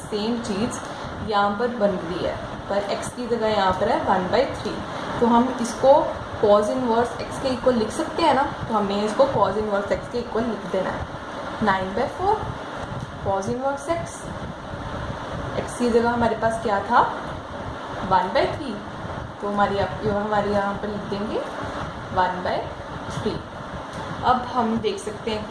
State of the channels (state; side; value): identical; both; correlation 1.00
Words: सेम चीज़ यहाँ पर बन रही है, पर x की जगह यहाँ पर है 1/3। तो हम इसको कॉज इनवर्स x के इक्वल लिख सकते हैं ना, तो हमें इसको कॉज इनवर्स x के इक्वल लिख देना है। 9/4 कॉज इनवर्स x की जगह हमारे पास क्या था 1/3, तो हमारे यहाँ पर लिख देंगे 1/3। अब हम देख सकते हैं